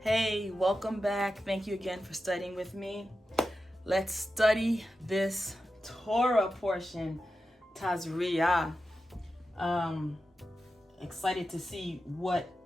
Hey, welcome back. Thank you again for studying with me. Let's study this Torah portion, Tazria. Excited to see what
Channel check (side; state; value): both; normal; correlation 0.91